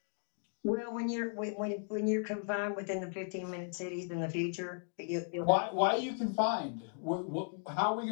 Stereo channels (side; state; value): right; silent; 54 dB below the other